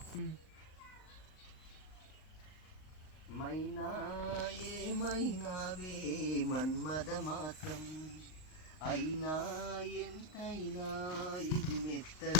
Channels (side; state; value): right; late; 38 ms